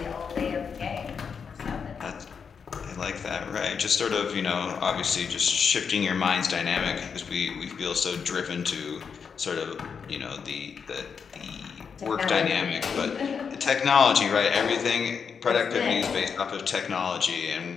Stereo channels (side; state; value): right; quieter; 6.3 dB